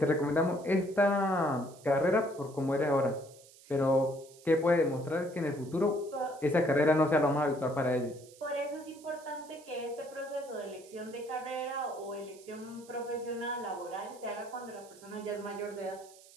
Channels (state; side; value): noise; right; hiss, 23 dB below the sound